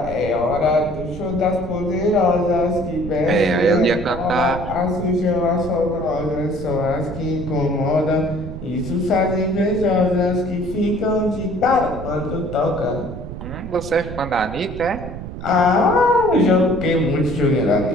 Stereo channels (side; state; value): right; noise; rumble, 10 dB below the sound